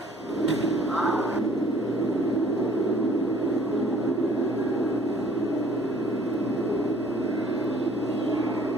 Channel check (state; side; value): normal; both; correlation 0.56